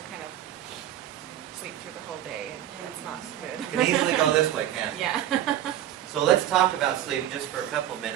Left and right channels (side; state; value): left; quieter; 12.0 dB